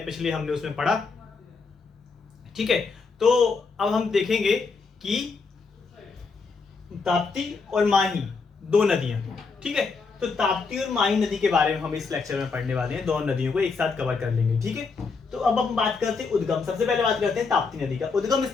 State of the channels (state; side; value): quieter; right; 4.6 dB